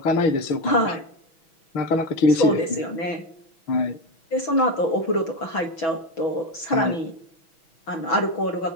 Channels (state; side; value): late; right; 6.1 ms